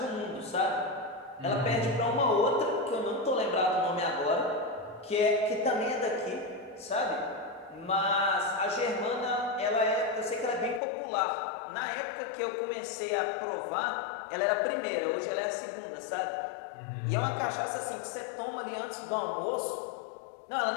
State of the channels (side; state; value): right; drops out; at 10.8 s